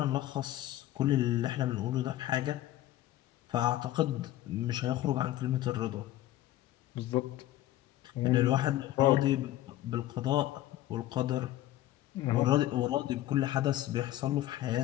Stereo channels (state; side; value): quieter; right; 14.2 dB